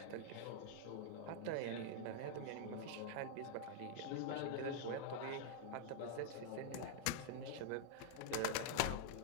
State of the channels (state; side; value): different; both; correlation -0.01